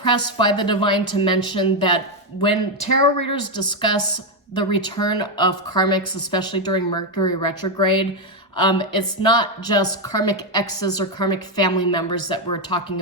by the divine to mention that when tarot readers discuss the return of karmics, especially during Mercury retrograde, it's not just karmic exes or karmic family members that we're talking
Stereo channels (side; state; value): both; normal; correlation 0.05